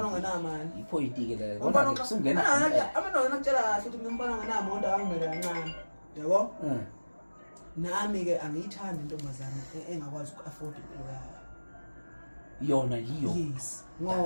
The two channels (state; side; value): inverted; both; correlation -1.00